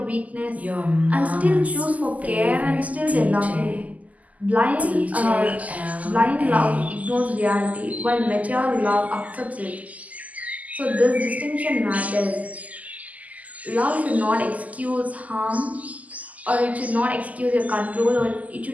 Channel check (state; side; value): late; left; 0.075 ms